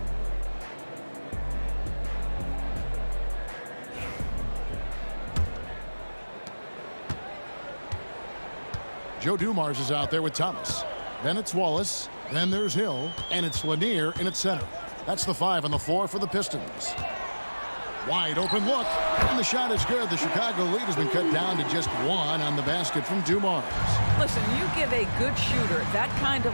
Joe Dumars is out there with Thomas. Then it's Wallace. Then there's Hill. And it's Lanier in its center. That's the 5 on the floor for the Pistons. Wide open look. And the shot is good. The Chicago lead has been cut down to just 1 on the basket from Dumars. Listen, you give a good shooter that kind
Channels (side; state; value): both; inverted; correlation -1.00